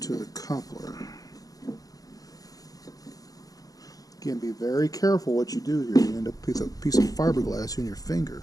the coupler. Again, be very careful what you do here. You end up with a piece of fiberglass in your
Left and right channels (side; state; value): right; late; 0.18 ms